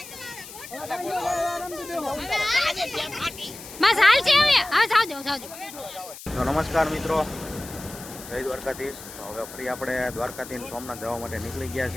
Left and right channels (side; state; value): left; noise; hiss, 14 dB below the sound